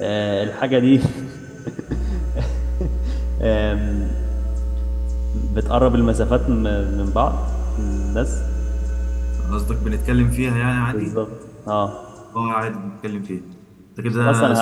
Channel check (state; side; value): identical; both; correlation 1.00